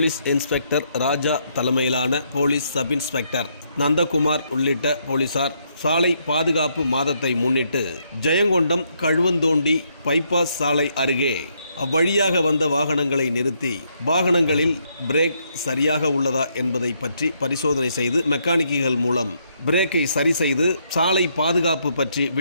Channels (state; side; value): inverted; both; correlation -0.74